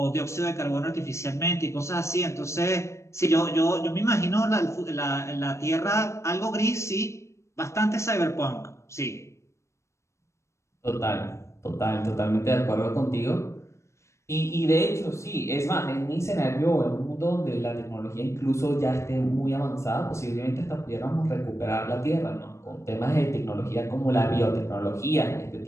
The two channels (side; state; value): right; late; 0.14 ms